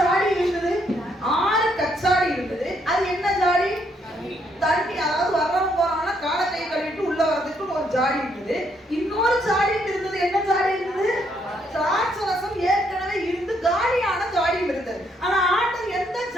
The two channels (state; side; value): normal; both; correlation 0.72